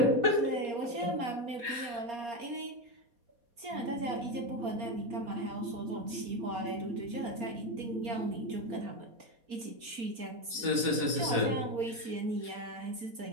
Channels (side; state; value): left; late; 4.3 ms